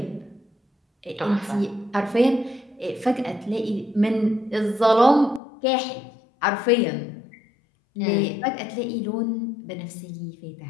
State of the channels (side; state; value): right; drops out; at 5.4 s